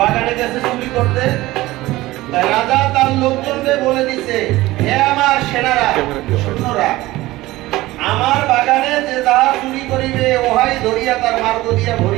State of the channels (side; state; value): left; quieter; 18.1 dB